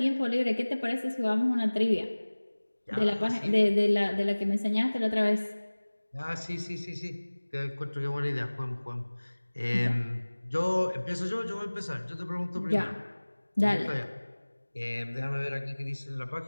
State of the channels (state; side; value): inverted; both; correlation -1.00